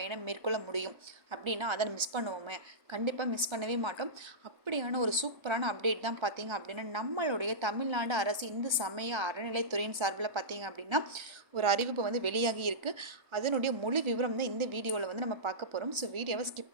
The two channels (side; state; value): left; late; 1.3 ms